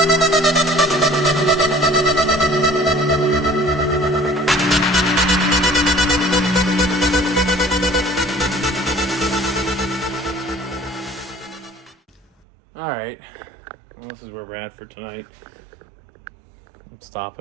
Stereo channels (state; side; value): drops out; left; at 12.2 s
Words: All right, had for tonight. I'm